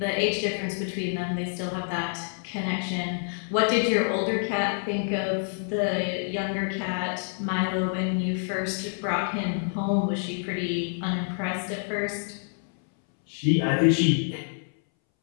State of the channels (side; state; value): right; silent; 60 dB below the other